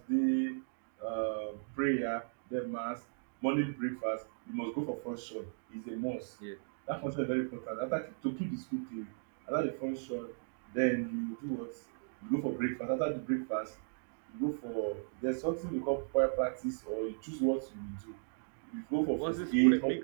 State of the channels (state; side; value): silent; left; digital silence